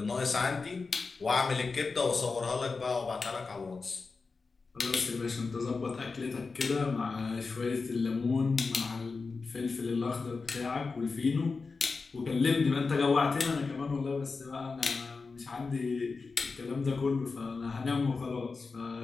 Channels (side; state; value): right; quieter; 4.4 dB